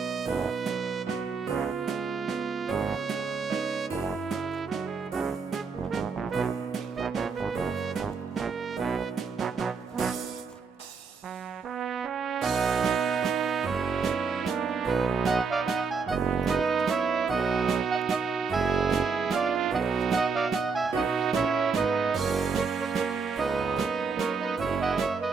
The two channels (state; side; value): quieter; left; 5.1 dB